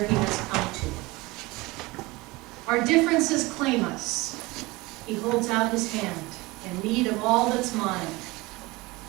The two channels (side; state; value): left; quieter; 22.3 dB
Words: he has come to. Our differences claim us. He holds out his hand in need of all that's mine.